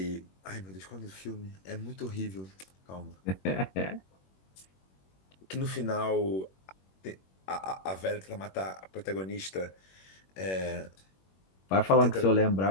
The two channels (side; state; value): right; late; 21 ms